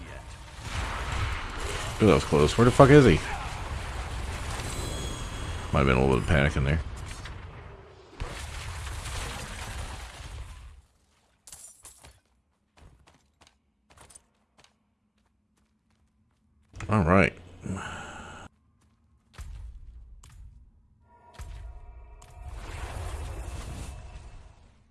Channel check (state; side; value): identical; both; correlation 1.00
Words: yet. Ooh, that was close. Where the fuck is he? Might have been a little bit of panic in there. All right.